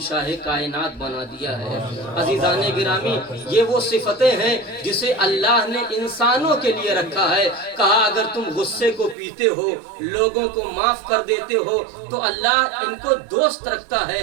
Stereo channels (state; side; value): drops out; left; at 9.2 s